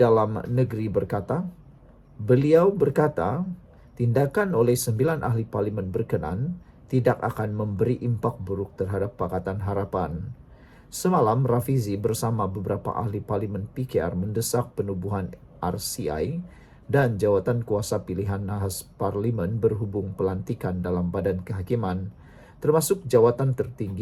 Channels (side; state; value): both; identical; correlation 1.00